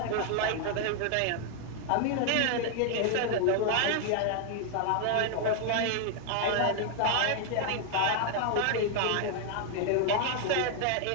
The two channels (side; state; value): both; different; correlation 0.00